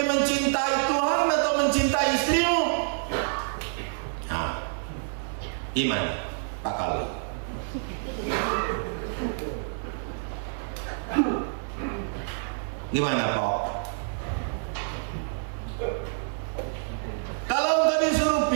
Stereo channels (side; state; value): left; silent; 60 dB below the other